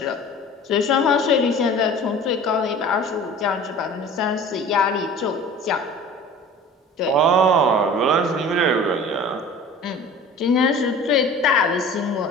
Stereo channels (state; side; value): normal; both; correlation 0.42